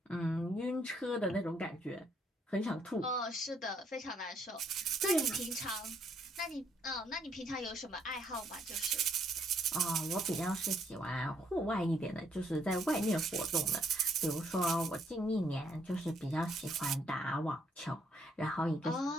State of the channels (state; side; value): normal; both; correlation 0.70